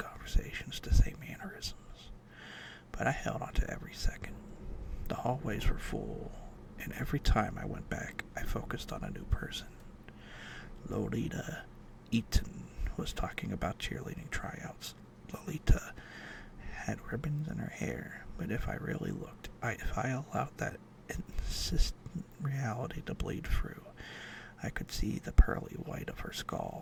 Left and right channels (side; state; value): both; identical; correlation 1.00